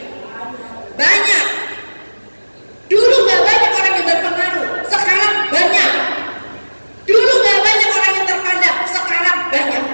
Banyak. Dulu gak banyak orang yang berpengaruh, sekarang banyak. Dulu gak banyak orang yang terpandang, sekarang banyak.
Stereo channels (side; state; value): both; inverted; correlation -1.00